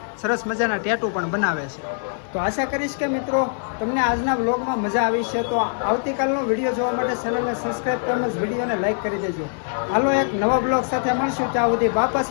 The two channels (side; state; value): right; silent; 61 dB below the other